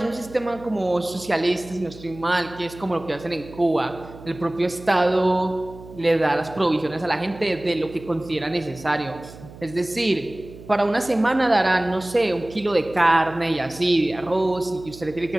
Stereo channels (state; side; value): noise; right; hum, 18 dB below the sound